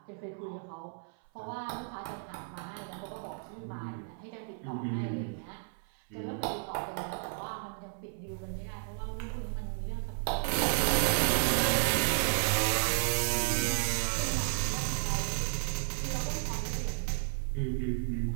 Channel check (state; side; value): silent; left; 56 dB below the other